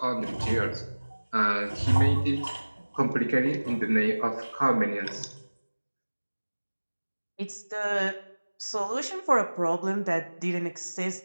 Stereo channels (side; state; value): both; inverted; correlation -1.00